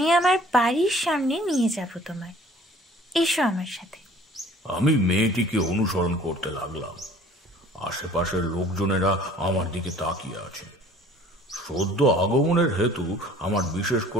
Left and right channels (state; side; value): normal; both; correlation 0.52